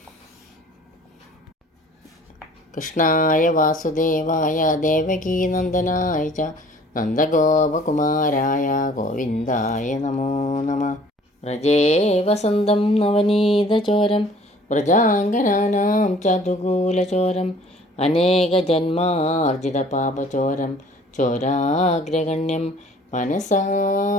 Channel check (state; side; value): normal; both; correlation 0.52